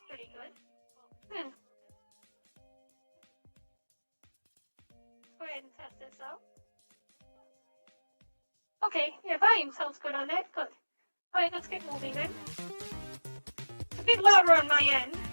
pretty good. Let's go ahead and test this out. Okay, yeah, volume sounds good on that. Good. Alright, let's get moving then. It's a bit louder on my end.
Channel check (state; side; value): inverted; both; correlation -1.00